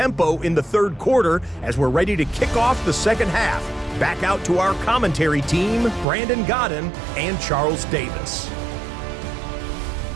in the third quarter as we're ready to kick off the second half. Back out to our commentary team, Brandon Godden and Charles Davis.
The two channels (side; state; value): left; drops out; at 6.1 s